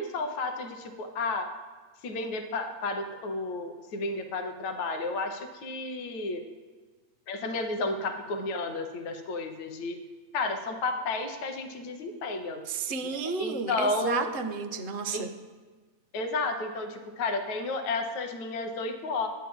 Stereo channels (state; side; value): late; right; 8.0 ms